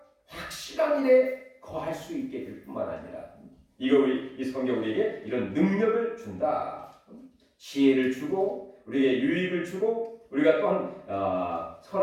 확실한 일에 거할 수 있게 될 뿐만 아니라 이 성경 우리에게 이런 능력을 준다. 지혜를 주고 우리에게 유익을 주고 우리가 또한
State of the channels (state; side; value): identical; both; correlation 1.00